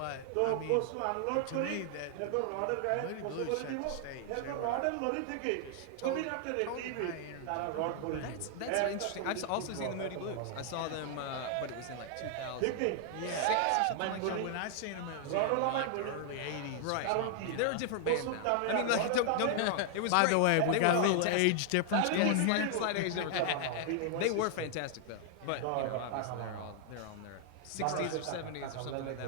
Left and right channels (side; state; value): both; different; correlation 0.00